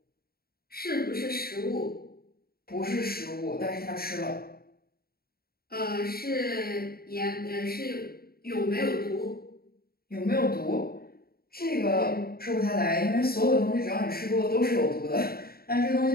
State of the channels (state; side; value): late; right; 0.44 ms